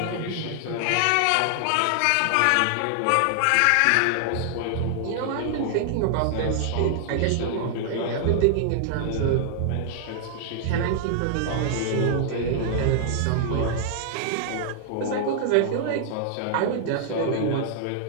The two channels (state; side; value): different; both; correlation 0.00